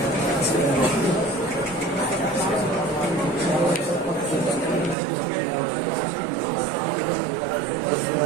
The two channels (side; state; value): left; drops out; at 5.0 s